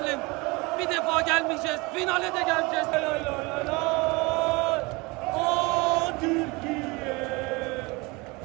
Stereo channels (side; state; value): left; quieter; 25.6 dB